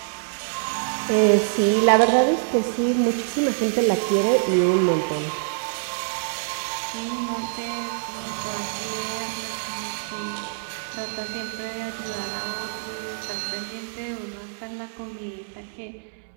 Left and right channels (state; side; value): silent; left; digital silence